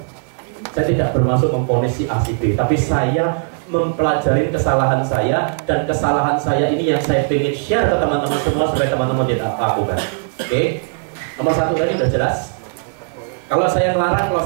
Saya tidak bermaksud memvonis si A si B, tapi saya mempelajari kesalahan saya, dan kesalahan saya ini yang saya ingin share ke teman-teman semua supaya teman-teman tidak lakukan. Oke? Nomor 1 tadi udah jelas. Kalau saya melarang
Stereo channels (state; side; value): silent; left; digital silence